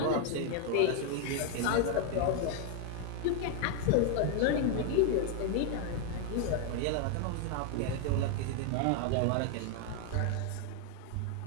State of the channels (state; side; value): different; both; correlation 0.00